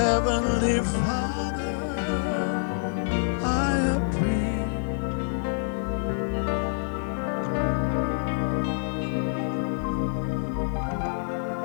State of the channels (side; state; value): right; silent; 59 dB below the other